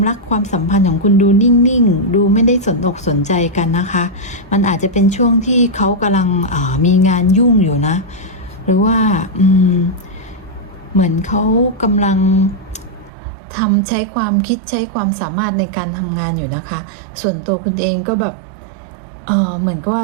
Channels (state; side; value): drops out; left; at 13.1 s